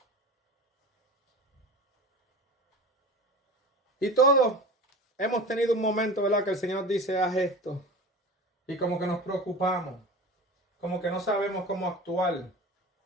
Y todos hemos tenido un momento, ¿verdad?, que el Señor dice, haz esto. Y como que nos preocupamos. Como que no sabemos cómo actuar.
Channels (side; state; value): both; normal; correlation 0.34